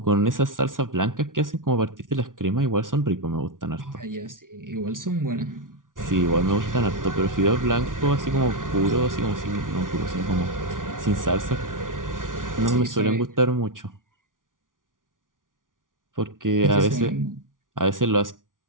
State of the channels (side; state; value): left; late; 0.88 ms